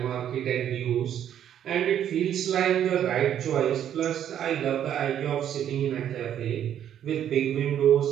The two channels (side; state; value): left; quieter; 10.1 dB